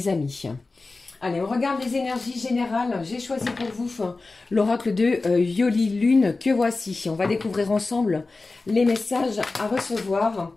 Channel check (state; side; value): quieter; right; 3.6 dB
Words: amis. Allez, on regarde les énergies générales. J'ai choisi pour vous l'oracle de Yoli Lune que voici. On va découvrir ensemble les messages à recevoir.